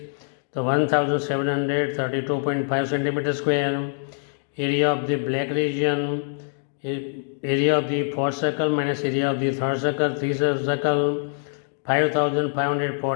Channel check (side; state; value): right; silent; digital silence